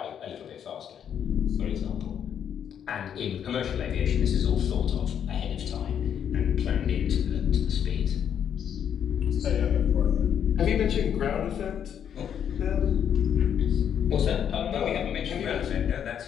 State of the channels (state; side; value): quieter; right; 8.8 dB